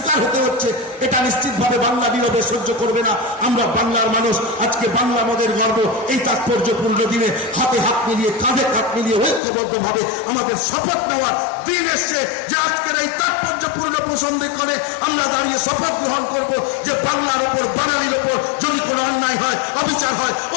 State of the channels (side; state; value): right; drops out; at 9.4 s